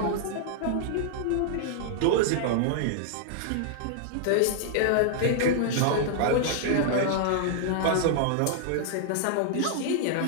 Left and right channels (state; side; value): different; both; correlation -0.01